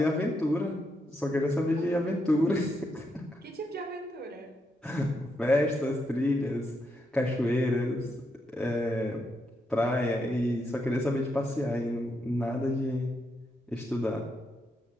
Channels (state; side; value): normal; both; correlation 0.81